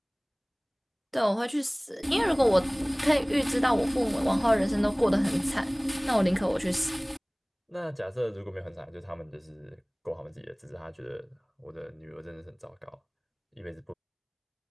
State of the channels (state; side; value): identical; both; correlation 1.00